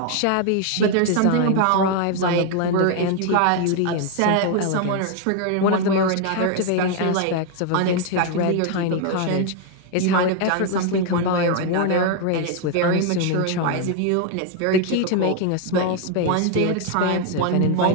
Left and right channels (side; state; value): both; different; correlation 0.00